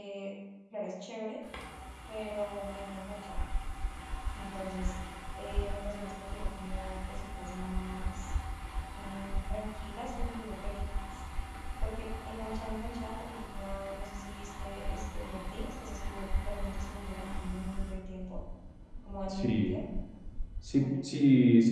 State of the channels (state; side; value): identical; both; correlation 1.00